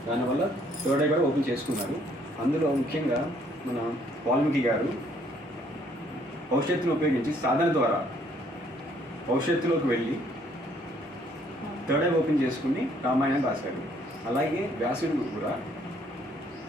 దానివల్ల థర్డ్ ఐ కూడా ఓపెన్ చేసుకున్నారు. అందులో ముఖ్యంగా మన వాల్మీకి గారు భవిష్యత్తును ఉపయోగించి సాధన ద్వారా భవిష్యత్తులోకి వెళ్ళి థర్డ్ ఐ ఓపెన్ చేసుకుని రామాయణం రాశారు. అలాగే వ్యాసుడు కూడా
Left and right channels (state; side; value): normal; both; correlation 0.65